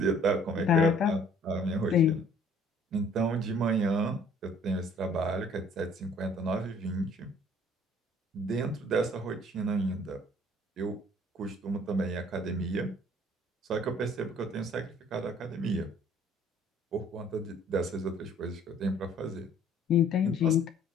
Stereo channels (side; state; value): both; normal; correlation 0.56